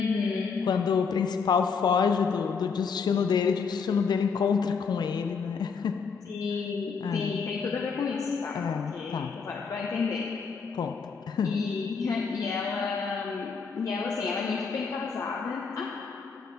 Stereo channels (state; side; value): quieter; right; 5.5 dB